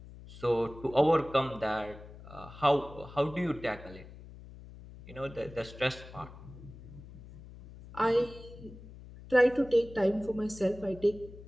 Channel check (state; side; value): noise; left; hum, 17 dB below the sound